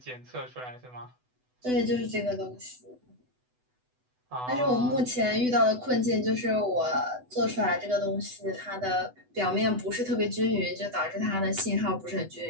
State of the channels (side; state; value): left; late; 8.0 ms